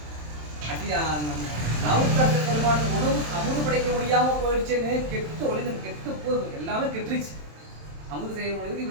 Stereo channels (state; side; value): late; left; 27 ms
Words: நாவுக்கரசர் பெருமானுக்கு உணவு அமுது படைக்க முடியாமல் போயிடுச்சுன்னு கெட்டு ஒளிந்து கெட்டு போய் எல்லாமே கெட்டுருச்சு, அமுது செய்ய முடியாது